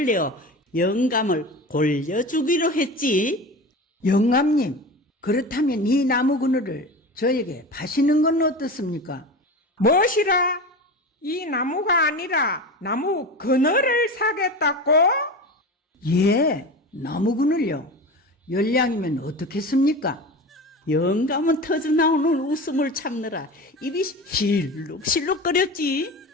내어 영감을 골려주기로 했지. 영감님, 그렇다면 이 나무 그늘을 저에게 파시는 건 어떻습니까? 무엇이라? 이 나무가 아니라 나무 그늘을 사겠다고? 예, 나무 그늘요. 열량이면 어떻겠습니까? 영감은 터져나오는 웃음을 참느라 입이 실룩실룩거렸지.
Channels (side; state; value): both; normal; correlation 0.29